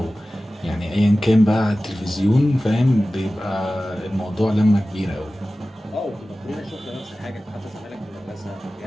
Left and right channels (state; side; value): normal; both; correlation 0.96